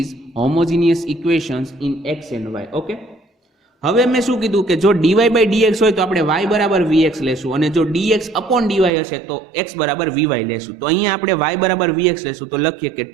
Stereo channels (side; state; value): left; drops out; at 8.9 s